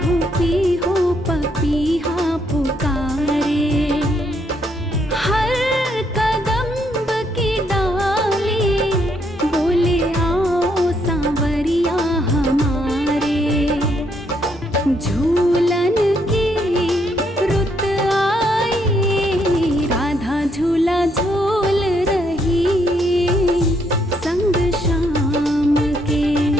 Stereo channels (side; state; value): both; normal; correlation 0.73